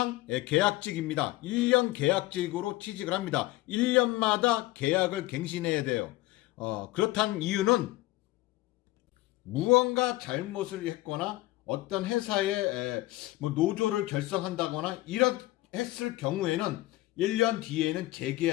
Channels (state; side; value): quieter; right; 18.3 dB